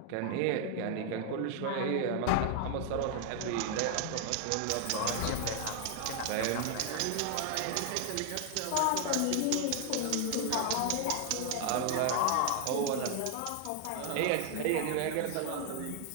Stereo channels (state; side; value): different; both; correlation 0.00